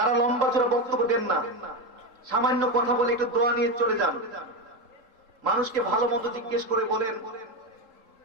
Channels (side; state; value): left; late; 3.7 ms